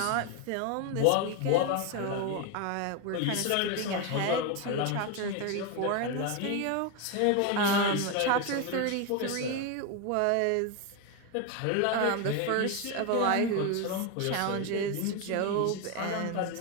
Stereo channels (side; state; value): both; different; correlation 0.02